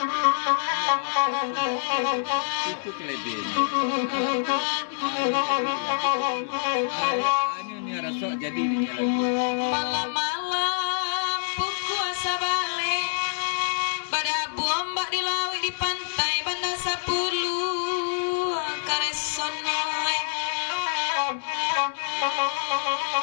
kelebihannya. Ini rasok jadi ini lagi. Malam-malam puasa balik pada bombak di laut di pantai Banda 10 karesonoe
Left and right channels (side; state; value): right; silent; digital silence